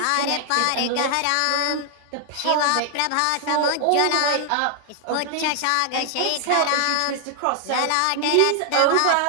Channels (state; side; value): different; both; correlation 0.00